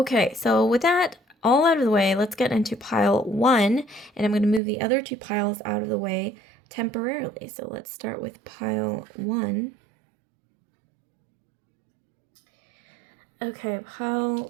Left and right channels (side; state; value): left; drops out; at 4.6 s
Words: so with that all out of the way, let's get into pile 1, and I'm going to move the other 2 piles out of the way temporarily. So let's start with pile 1. Okay,